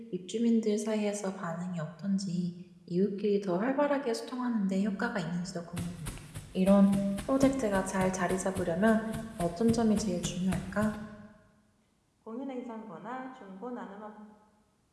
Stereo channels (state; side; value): identical; both; correlation 1.00